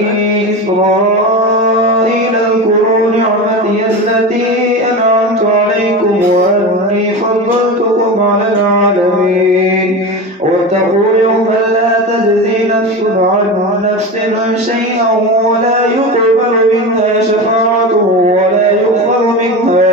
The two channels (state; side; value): normal; both; correlation 0.24